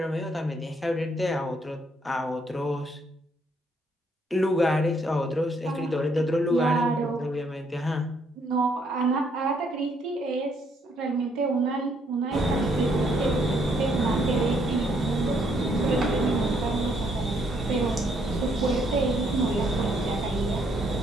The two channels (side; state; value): both; normal; correlation 0.70